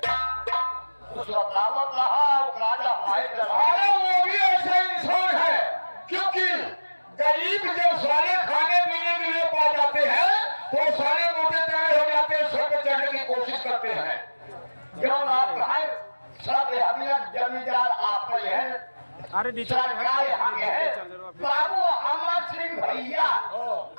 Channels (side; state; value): both; inverted; correlation -1.00